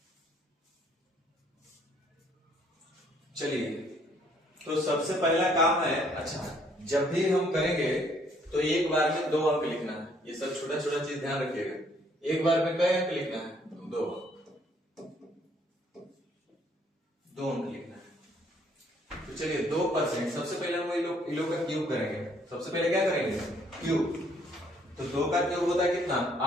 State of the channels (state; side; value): normal; both; correlation 0.65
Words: चलिए तो सबसे पहला काम है, अच्छा जब भी हम करेंगे तो एक बार में 2 अंक लिखना है। ये सब छोटा छोटा चीज ध्यान रखिएगा। एक बार में कई अंक लिखना है? 2 अंक लिखना है। तो चलिए 2%, सबसे पहले हम इन लोग का क्यूब करेंगे। सबसे पहले क्या करेंगे? क्यूब। तो 2 का क्यूब होता है कितना?